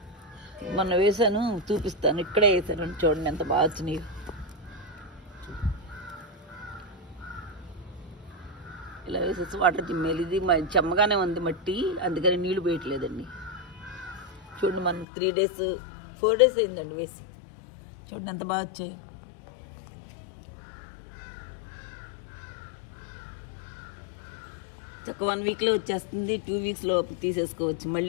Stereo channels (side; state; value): right; drops out; at 15.1 s